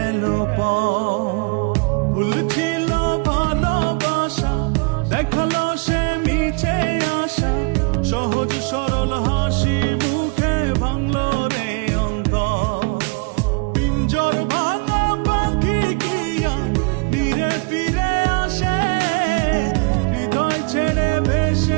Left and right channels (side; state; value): left; quieter; 31.2 dB